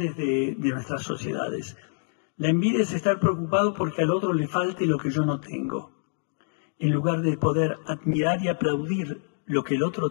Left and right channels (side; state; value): right; silent; digital silence